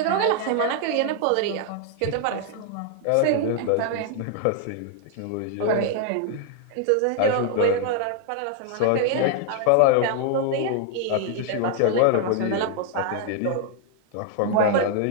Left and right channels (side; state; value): both; different; correlation 0.00